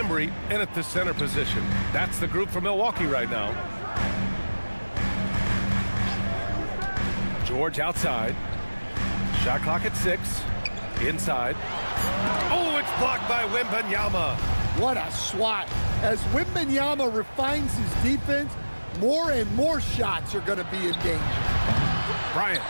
in at the center position. That's the group for Milwaukee right now. George outside. Shot clock at 6. Inside. Oh, it's blocked by Wembanyama. What a swat. As Wembanyama refines his defense, more and more shots are going to be in danger. Bryant,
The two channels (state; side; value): inverted; both; correlation -1.00